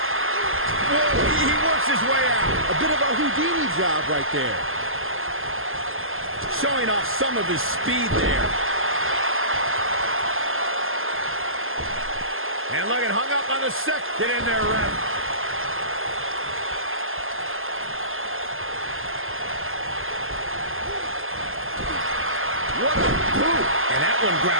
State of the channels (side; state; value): left; late; 0.60 ms